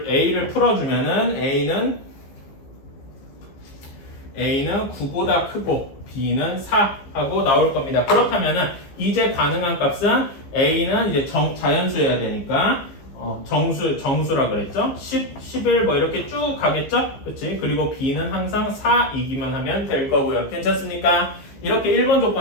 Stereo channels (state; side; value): late; right; 15 ms